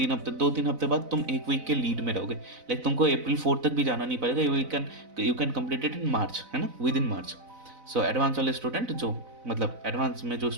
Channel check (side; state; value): left; late; 4.0 ms